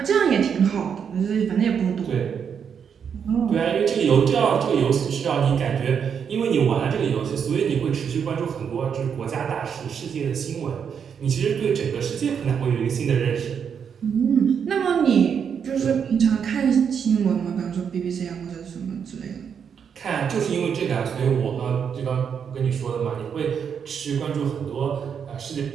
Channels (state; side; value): quieter; left; 7.3 dB